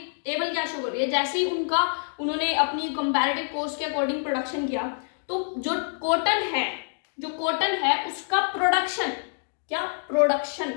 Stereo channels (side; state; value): right; silent; digital silence